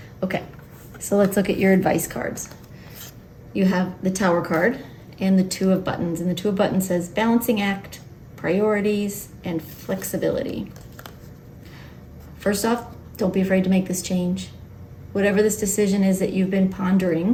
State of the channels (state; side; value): identical; both; correlation 1.00